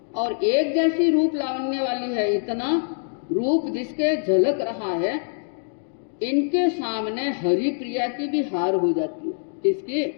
और एक जैसी रूप लावण्य वाली है, इतना रूप जिसके झलक रहा है, इनके सामने हरि प्रिया की भी हार हो जाती है। किसकी?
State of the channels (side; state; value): right; silent; digital silence